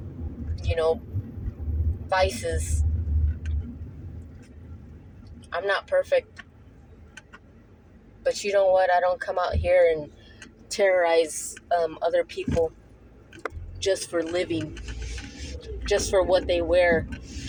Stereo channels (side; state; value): both; identical; correlation 1.00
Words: vices. I'm not perfect. But you know what? I don't come out here and terrorize other people just for living, just for what they wear,